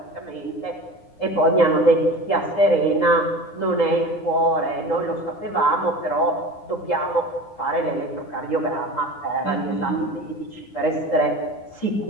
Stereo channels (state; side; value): late; right; 9.8 ms